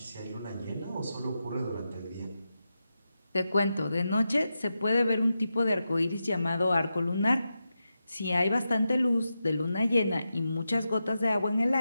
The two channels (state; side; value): inverted; both; correlation -0.89